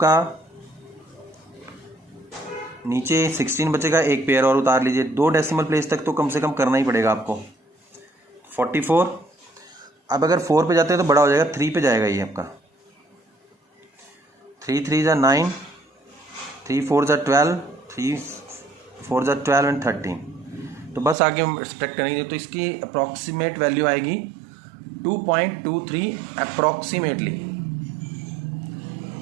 नीचे 16 बचेगा, एक पेयर और उतार लीजिए। 2 डेसिमल प्लेस तक तो कम से कम करना ही पड़ेगा आपको। 44। अब अगर 4 पे जाते हैं तो बड़ा हो जाएगा, 3 पे जाएगा ये आपका। 3 3 ज़ा 9, 3 4 ज़ा 12, 3 4 ज़ा 12 एंड 13। तो बस आगे हम सब्ट्रैक्ट करेंगे तो इसकी अप्रॉक्सीमेट वैल्यू आएगी 2.23 अप्रॉक्सीमेटली,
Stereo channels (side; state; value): left; drops out; at 21.2 s